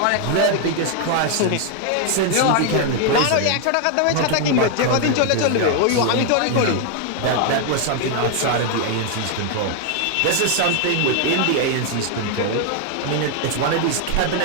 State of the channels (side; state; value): both; different; correlation 0.00